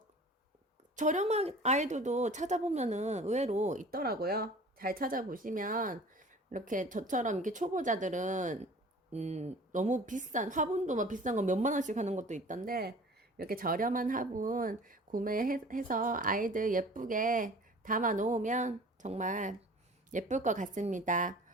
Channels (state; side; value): normal; both; correlation 0.45